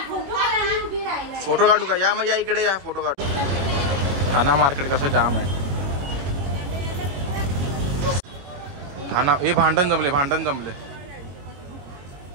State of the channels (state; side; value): late; left; 21 ms